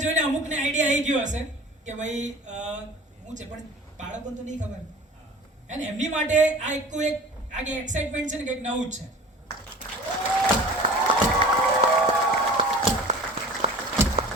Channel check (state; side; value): normal; both; correlation 0.41